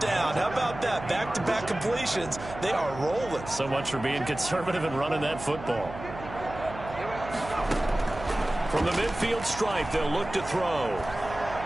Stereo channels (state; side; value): noise; right; hum, 12 dB below the sound